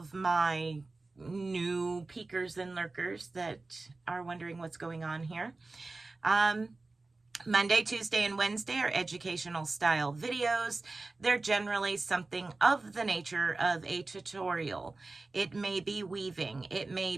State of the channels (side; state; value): left; quieter; 3.4 dB